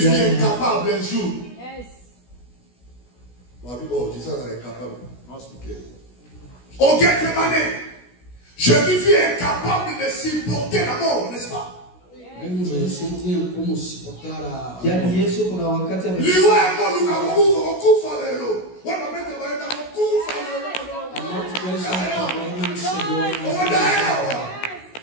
fut incapable un jour. Oh, Jésus est incapable. Au Gethsemane, Jésus fut incapable de supporter la mort, n'est-ce pas? Mesmo Jesus não tinha como suportar a. yaani Yesu kuna wakati Liwa emo lukakufa lelo. Wana mete baenda kufa lelo. A morte que ele estava não chegou. Odaewa.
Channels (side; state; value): right; late; 16 ms